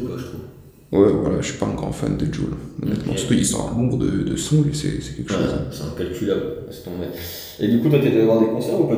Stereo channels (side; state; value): both; identical; correlation 1.00